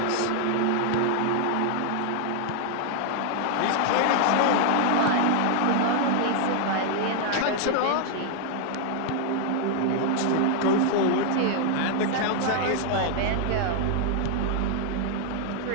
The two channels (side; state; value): both; different; correlation 0.00